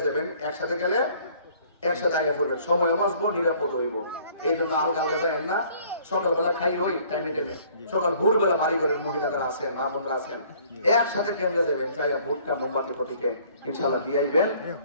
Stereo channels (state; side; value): inverted; both; correlation -0.57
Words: যাবেন, একসাথে গেলে একসাথে আগে পড়বেন, সময় বাঁচবো, নিরাপদ হইব। এই জন্য আলগা আলগা যাবেন না, সকালবেলা খাই হই টাইমে টাইমে, সকাল ভোরবেলা বাড়ি ঘরের মহিলা যারা আছেন, মা বোনরা আছেন, একসাথে কেন্দ্রে যাবেন, যাইয়া ভোটটা মোমবাতি প্রতীকে ইনশাল্লাহ দিয়ে আইবেন।